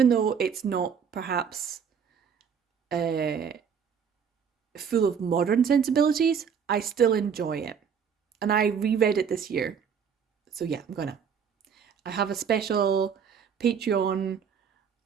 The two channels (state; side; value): quieter; left; 7.0 dB